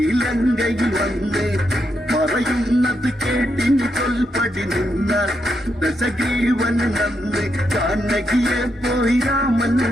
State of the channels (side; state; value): both; normal; correlation 0.81